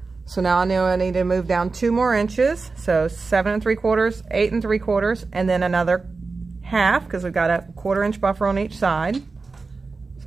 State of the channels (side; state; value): left; quieter; 4.1 dB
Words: So now I know I need to move down 2 more inches. So 7 3/4, 8 3/4, and then another 1/2 because we've got a 1/4 inch buffer on each side. So